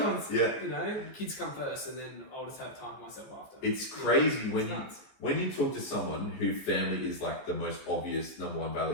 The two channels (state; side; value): late; right; 15 ms